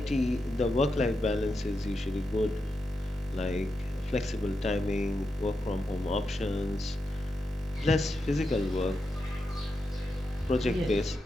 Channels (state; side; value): normal; both; correlation 0.87